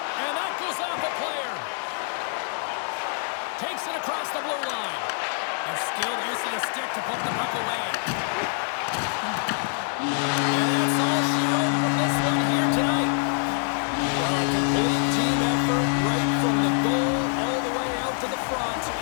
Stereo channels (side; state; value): right; silent; 58 dB below the other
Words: And that goes off a player. Takes it across the blue line. A skilled use of the stick to put the puck away. And that's all she wrote from this one here tonight. Well, a complete team effort right from the goal all the way out to the front,